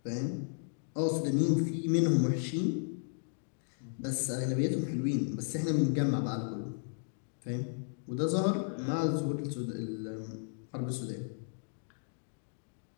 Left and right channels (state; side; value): silent; right; digital silence